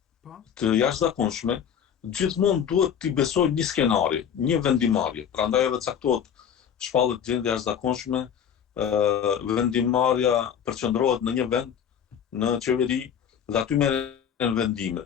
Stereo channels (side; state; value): right; quieter; 8.4 dB